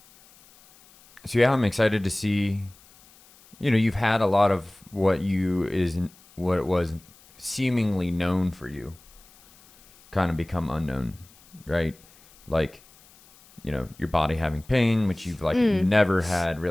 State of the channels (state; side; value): noise; left; hiss, 27 dB below the sound